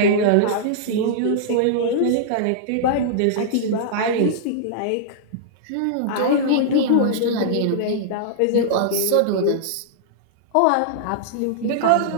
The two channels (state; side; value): different; both; correlation -0.02